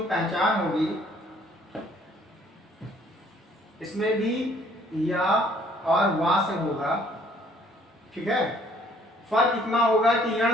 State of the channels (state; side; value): normal; both; correlation 0.61